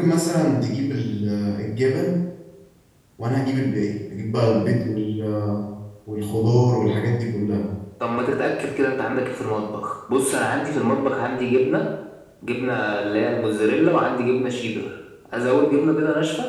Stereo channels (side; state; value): both; identical; correlation 1.00